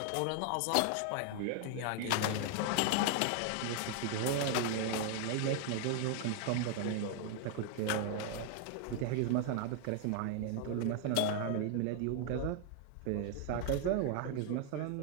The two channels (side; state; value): both; different; correlation 0.00